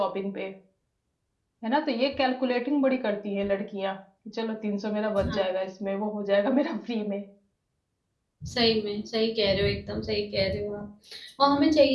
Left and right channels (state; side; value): identical; both; correlation 1.00